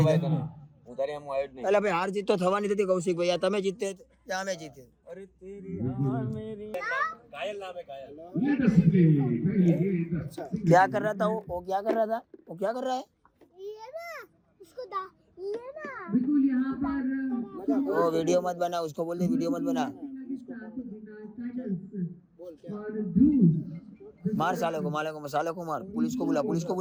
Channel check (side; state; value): both; identical; correlation 1.00